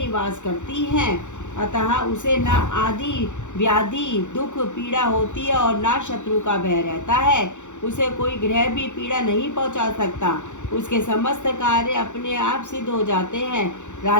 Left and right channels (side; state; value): right; late; 0.85 ms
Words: करती है। अतः उसे न आदि व्याधि दुख पीड़ा होती है और न शत्रु का भय रहता है। उसे कोई ग्रह भी पीड़ा नहीं पहुंचा सकता। उसके समस्त कार्य अपने आप सिद्ध हो जाते हैं।